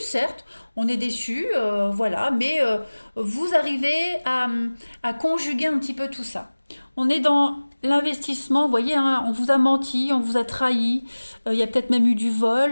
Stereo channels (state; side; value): inverted; both; correlation -1.00